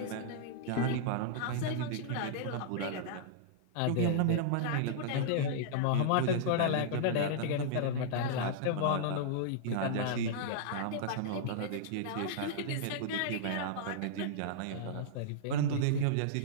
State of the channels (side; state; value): both; different; correlation -0.02